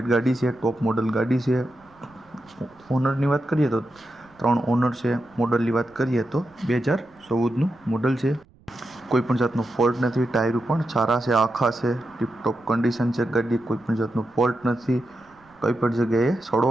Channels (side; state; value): right; noise; rumble, 30 dB below the sound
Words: ગાડી છે, ટોપ મોડલ ગાડી છે। ઓનરની વાત કરીએ તો 3 ઓનર છે। મોડલની વાત કરીએ તો 2014નું મોડલ છે। કોઈ પણ જાતનો ફોલ્ટ નથી, ટાયરો પણ સારા છે, આખા છે, ટીપટોપ કન્ડિશન છે ગાડી, કોઈ પણ જાતનો ફોલ્ટ નથી, કોઈ પણ જગ્યાએ સડો